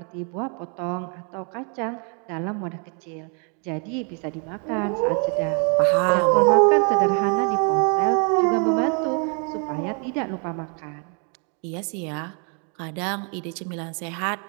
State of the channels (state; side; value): quieter; left; 39.6 dB